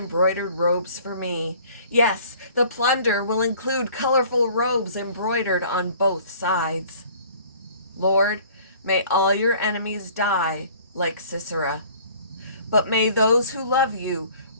robes for me. Yes, the plunder will include colorful robes embroidered on both sides. Lord, may all your enemies die like Sisera. But may those who love you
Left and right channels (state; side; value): inverted; both; correlation -0.52